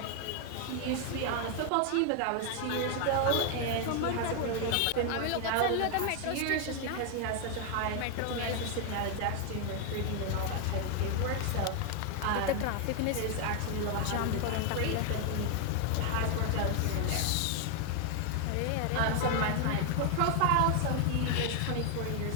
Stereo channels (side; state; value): both; different; correlation 0.00